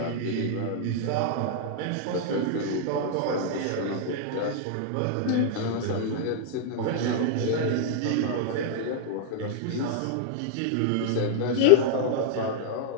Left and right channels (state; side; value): different; both; correlation -0.01